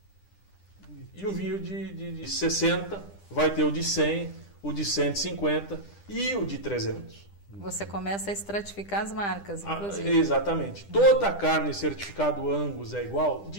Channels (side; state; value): right; late; 10 ms